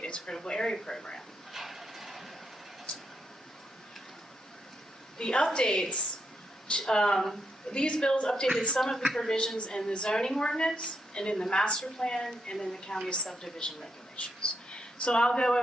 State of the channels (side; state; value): both; normal; correlation 0.80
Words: its critical area program. The updates, these bills updated some of the provisions in the zoning ordinance and in the master plan and in the county's subdivision regulations. So I'll go